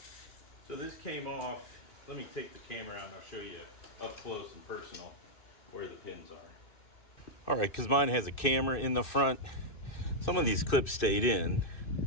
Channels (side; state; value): right; late; 2.6 ms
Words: so this came off. Let me take the camera out and I'll show you up close and personal where the pins are. All right, because mine has a camera in the front. Some of these clips stayed in,